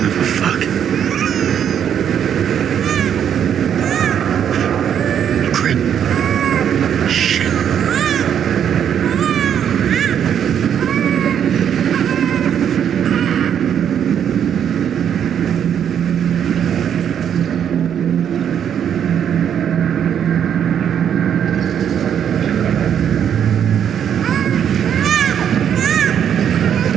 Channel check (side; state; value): left; quieter; 8.9 dB